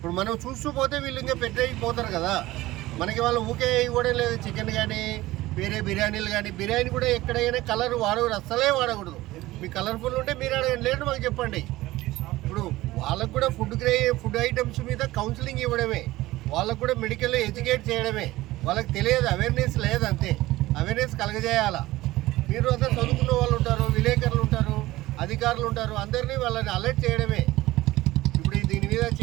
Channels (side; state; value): left; quieter; 17.7 dB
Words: మనం చూస్తూ పోతే వీళ్ళు ఇంకా పెట్టేయిపోతారు కదా. మనకి వాళ్ళు ఊకే ఇవ్వడం లేదు. చికెన్ కానీ, వేరే బిర్యానీలు కానీ, బిర్యానీ కూడా ఎక్కడైనా కలర్ వాడకూడదు, అస్సలే వాడకూడదు. మీకు కలర్ఫుల్ ఉంటే మీరు అడగండి, లేదు మాకు చెప్పండి. ఇప్పుడు వాళ్ళకు కూడా ఫుడ్ ఐటమ్స్ మీద కౌన్సిలింగ్ ఇవ్వడమే, వాళ్ళకు కూడా మెడికల్ ఎడ్యుకేట్ చేయడమే. వాళ్ళకి తెలియదు, అవేర్నెస్ లేదు, అంతే. అవేర్నెస్ కలగజేయాలా. మీరు అసలు చదువుకున్న వాళ్ళు ఉంటారు, విలేకరులు ఉంటారు, అధికారులు ఉంటారు, అందరినీ వాళ్ళని అలర్ట్ చేయడమే. ఇప్పుడు దీని మీద